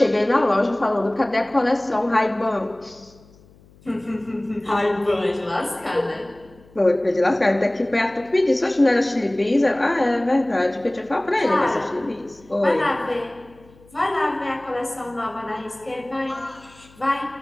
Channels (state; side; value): noise; left; hum, 27 dB below the sound